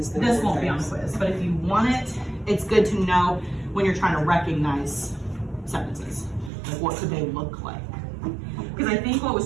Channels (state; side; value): drops out; left; at 6.5 s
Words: This won't be on the quiz, but if you want it, it's good to know when you're trying to recognize sentences. Like what could they look like? Because I think what